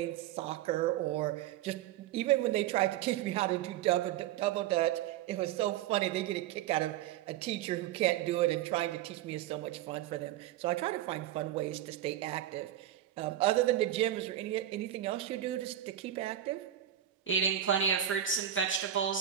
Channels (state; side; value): quieter; left; 11.6 dB